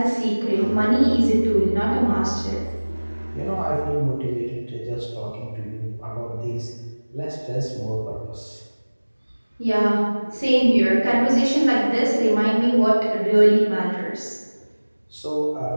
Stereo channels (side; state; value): both; inverted; correlation -1.00